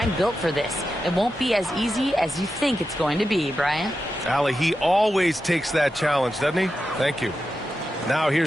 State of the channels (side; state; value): both; normal; correlation 0.90